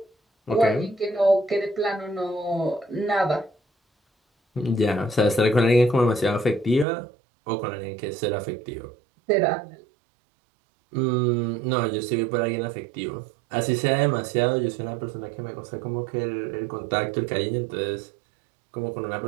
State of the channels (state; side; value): drops out; left; at 6.9 s